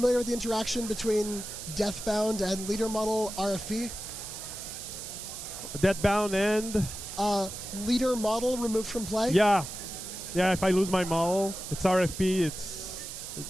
with the interaction between Deathbound and leader model RFP? Deadbound and Leader model removed from play? yeah. If I lose my model, it's RFP. It's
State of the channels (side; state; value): right; noise; hiss, 9 dB below the sound